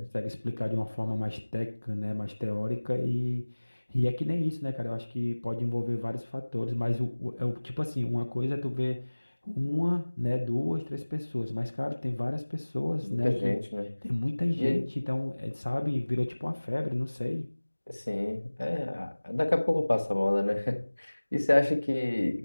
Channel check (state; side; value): inverted; both; correlation -1.00